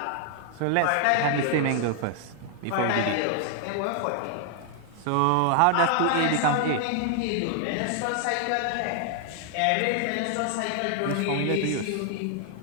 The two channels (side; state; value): both; different; correlation 0.00